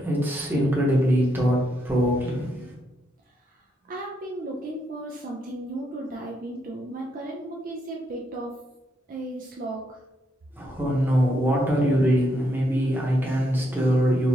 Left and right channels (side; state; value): both; normal; correlation 0.78